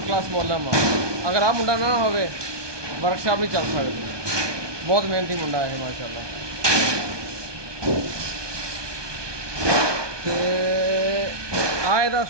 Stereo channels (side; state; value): left; late; 1.2 ms